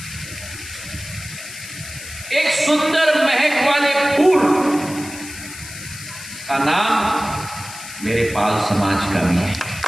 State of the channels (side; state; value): left; noise; hiss, 13 dB below the sound